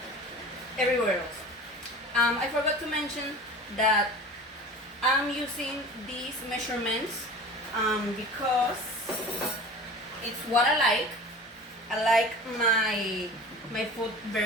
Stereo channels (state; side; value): normal; both; correlation 0.38